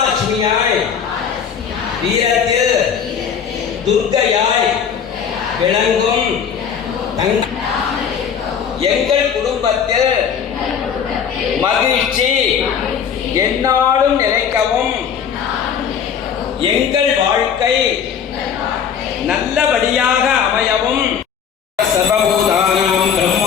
வீரத்தில் துர்க்கையாய் விளங்கும் எங்கள் குடும்பத்தில் மகிழ்ச்சி எந்நாளும் நிலைக்கவும் எங்கள் வாழ்க்கை நல்லபடியாக அமையவும் சர்வ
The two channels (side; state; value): right; quieter; 7.6 dB